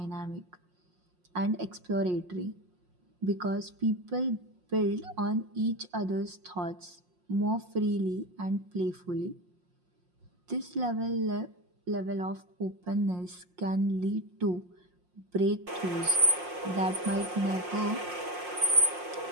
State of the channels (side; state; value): left; late; 5.6 ms